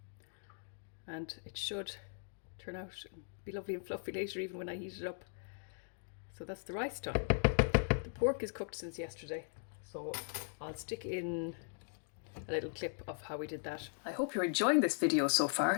And it should turn out and be lovely and fluffy later, even when I heat it up. So that's the rice done. The pork is cooked since yesterday, so I'll stick in a little clip of how we did that. I hope you're enjoying this video so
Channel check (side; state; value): right; silent; digital silence